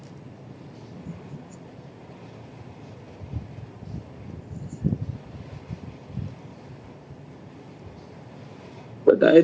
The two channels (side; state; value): both; identical; correlation 1.00